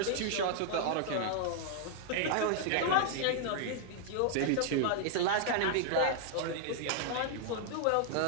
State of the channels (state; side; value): different; both; correlation 0.00